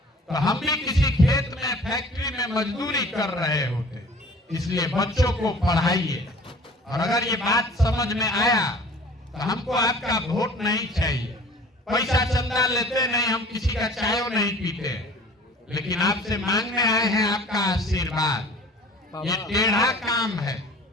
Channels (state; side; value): normal; both; correlation 0.47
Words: तो हम भी किसी खेत में, फैक्ट्री में मजदूरी कर रहे होते। इसलिए बच्चों को पढ़ाइए। और अगर ये बात समझ में आया तो हमको आपका वोट नहीं चाहिए। पैसा चंदा लेते नहीं, हम किसी का चाय नहीं पीते, लेकिन आपसे मांगने आए हैं आपका आशीर्वाद। ये टेढ़ा काम है।